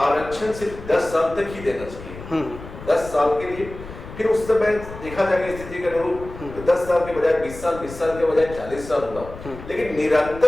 सिर्फ 10 साल तक ही देना चाहिए, 10 साल के लिए। फिर उस समय देखा जाएगा स्थिति के अनुरूप 10 साल के बजाय 20 साल, 20 साल के बजाय 40 साल हुआ। लेकिन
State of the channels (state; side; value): noise; left; rumble, 14 dB below the sound